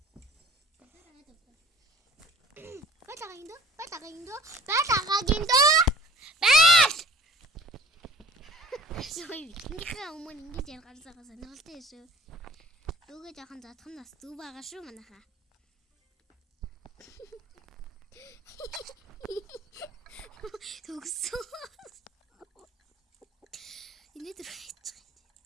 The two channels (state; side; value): normal; both; correlation 0.47